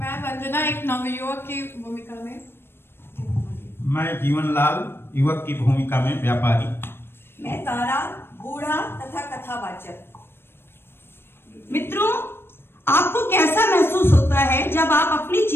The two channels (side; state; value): right; late; 0.11 ms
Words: वंदना एक नवयुवक की भूमिका में। मैं जीवनलाल युवक की भूमिका में व्यापारी। मैं तारा बूढ़ा तथा कथावाचक। मित्रों, आपको कैसा महसूस होता है जब आप अपनी